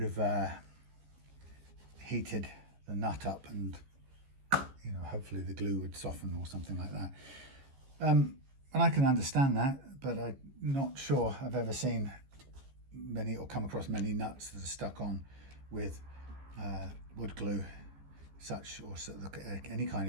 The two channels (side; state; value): left; late; 15 ms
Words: have heated the nut up, and hopefully the glue would soften or something like that. And I can understand that, but I'm not sure I've ever seen many or come across many nuts that are stuck on with wood glue, any kind